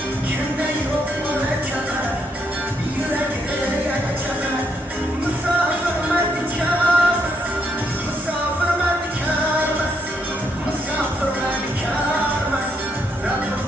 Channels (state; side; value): normal; both; correlation 0.76